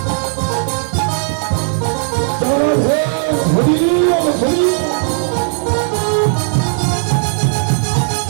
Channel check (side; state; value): left; silent; digital silence